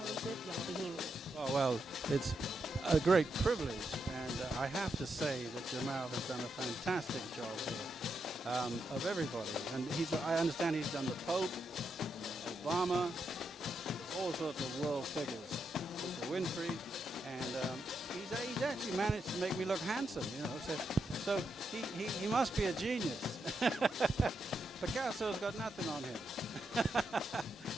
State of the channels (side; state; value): both; normal; correlation 0.83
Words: young Bahamian? Oh, well, it's a great privilege, and I have to say that Jamal has done a fantastic job here of everybody. And I understand he's done the Pope, Obama, all sorts of world figures, Oprah Winfrey, and he's actually managed to make me look handsome, you know. So he must be a genius. Picasso's got nothing on him.